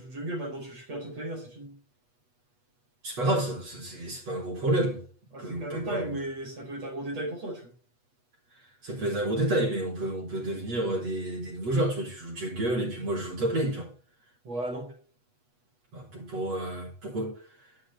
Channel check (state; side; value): late; left; 8.2 ms